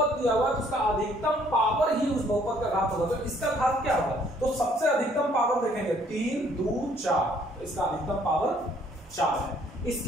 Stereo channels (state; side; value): normal; both; correlation 0.63